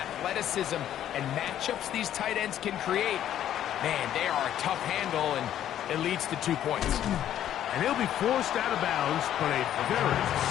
and matchups these tight ends can create, man, they are a tough handle, and it leads to 2 points. And he'll be forced out of bounds, but a very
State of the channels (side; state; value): right; quieter; 11.2 dB